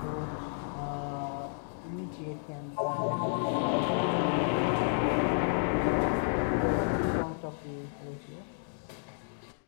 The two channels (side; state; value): right; silent; digital silence